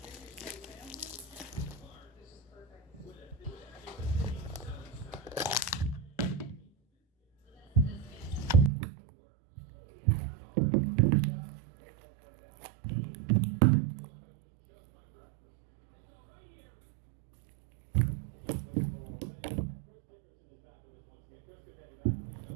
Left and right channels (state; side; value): drops out; left; at 8.7 s